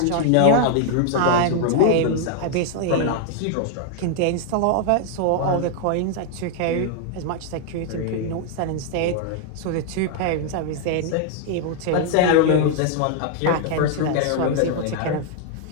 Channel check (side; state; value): both; different; correlation 0.00